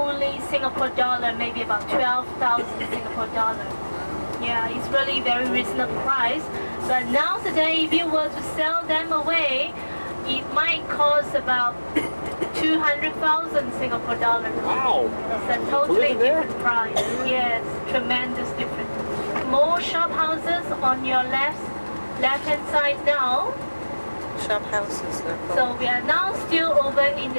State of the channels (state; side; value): inverted; both; correlation -1.00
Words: Singapore dollar, maybe about 12,000 Singapore dollar. Yeah, it's really very reasonable price. But now today, if you were to sell them away, it might cost about 200,000 Singapore dollars. Wow! It's a totally different price. Yes, tremendous difference. More shop houses on your left-hand side now. Shop houses, they're called. So we are now still over in